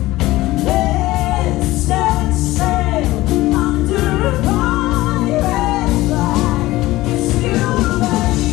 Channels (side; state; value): right; quieter; 17.9 dB